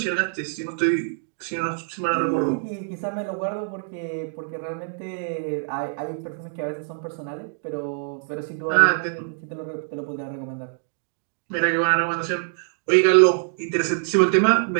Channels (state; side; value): silent; left; digital silence